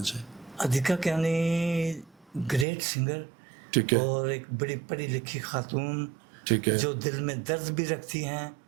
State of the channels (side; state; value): left; drops out; at 2.7 s